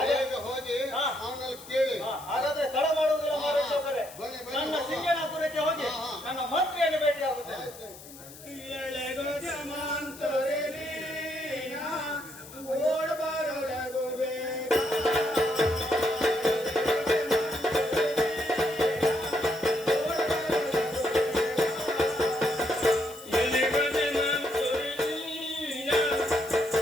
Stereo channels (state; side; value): noise; left; hiss, 17 dB below the sound